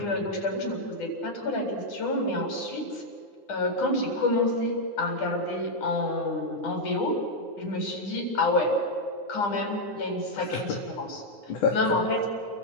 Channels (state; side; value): late; right; 9.9 ms